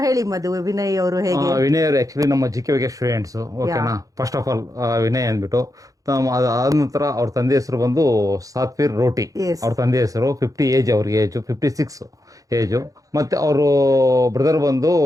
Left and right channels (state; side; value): late; left; 0.17 ms